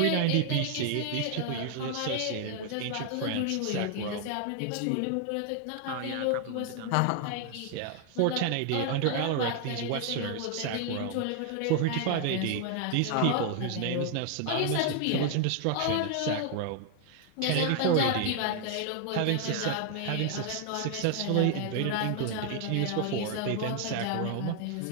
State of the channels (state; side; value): different; both; correlation 0.00